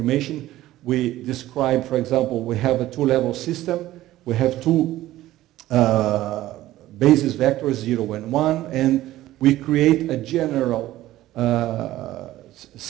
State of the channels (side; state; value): left; quieter; 15.2 dB